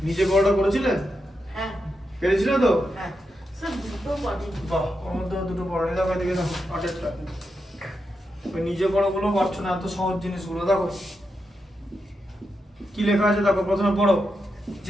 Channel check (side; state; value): both; normal; correlation 0.86